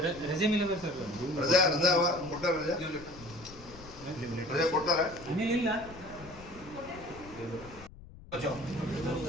ರಜೆ ಮೇಲೆ ಸರ್. ರಜಾ ಕೊಟ್ಟಾರ? ರಜಾ ಕೊಟ್ಟಾರ? ಇಲ್ಲ.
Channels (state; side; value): noise; left; rumble, 18 dB below the sound